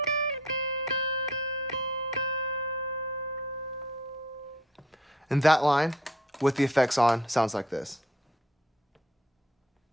And that line, with the effects on, sounds like this.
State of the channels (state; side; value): normal; both; correlation 0.57